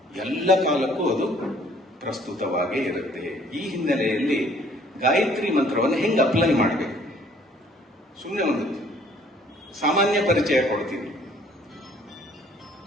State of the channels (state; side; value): normal; both; correlation 0.58